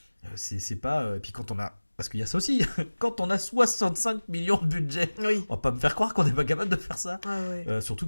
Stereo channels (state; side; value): inverted; both; correlation -1.00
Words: C'est pas, et puis quand on a, parce qu'il y a ça aussi, quand on a 65 millions de budget, on va pas me faire croire qu'on n'est pas capable de faire ça.